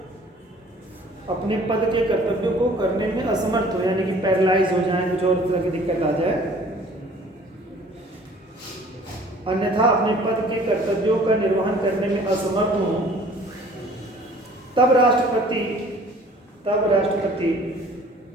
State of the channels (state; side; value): normal; both; correlation 0.52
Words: अपने पद के कर्तव्यों को करने में असमर्थ हो, यानी कि पैरालाइज हो जाए, कुछ और तरह की दिक्कत आ जाए, अन्यथा अपने पद के कर्तव्यों का निर्वहन करने में असमर्थ हो, तब राष्ट्रपति